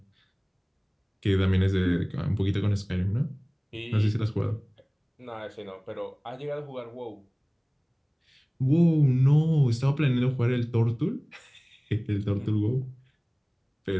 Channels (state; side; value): identical; both; correlation 1.00